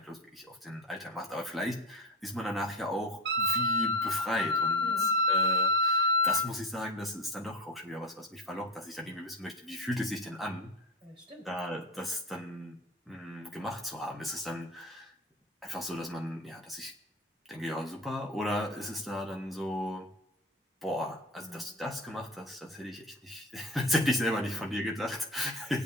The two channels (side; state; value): both; normal; correlation 0.27